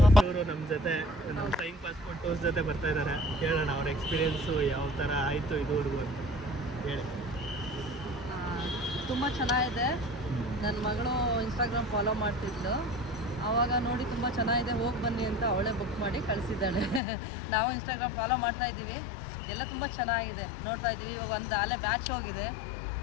ನಮ್ಮ ಜೊತೆ ನಮ್ಮ ಫ್ಲೈಯಿಂಗ್ ಪಾಸ್ಪೋರ್ಟ್ ಟೂರ್ಸ್ ಜೊತೆ ಬರ್ತಾ ಇದ್ದಾರೆ. ಕೇಳೋಣ ಅವ್ರ ಎಕ್ಸ್ಪೀರಿಯೆನ್ಸು ಯಾವ ಥರ ಆಯಿತು ಇದುವರೆಗೂ ಅಂತ ಹೇಳಿ. ತುಂಬ ಚೆನ್ನಾಗಿದೆ. ನನ್ನ ಮಗಳು ಇನ್ಸ್ಟಾಗ್ರಾಮ್ ಫಾಲೋ ಮಾಡ್ತಿದ್ಲು, ಆವಾಗ ನೋಡಿ ತುಂಬ ಚೆನ್ನಾಗಿದೆ, ಹೋಗಿ ಬನ್ನಿ ಅಂತ ಅವಳೇ ಬುಕ್ ಮಾಡಿ ಕಳಿಸಿದ್ದಾಳೆ. ನಾವು ಇನ್ಸ್ಟಾಗ್ರಾಮ್ ಫಾಲೋ ಮಾಡ್ತಾ ಇದ್ದೀವಿ, ಎಲ್ಲ ತುಂಬ ಚೆನ್ನಾಗಿದೆ, ನೋಡ್ತಾ ಇದ್ದೀವಿ. ಇವಾಗ ಒಂದು ಅಲ್ಲೇ ಬ್ಯಾಚ್ ಹೋಗಿದೆ,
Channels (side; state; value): right; drops out; at 17.0 s